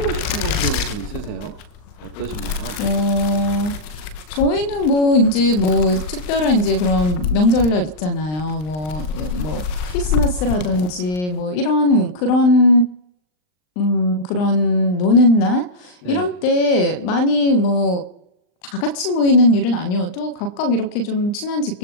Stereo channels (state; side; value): late; right; 39 ms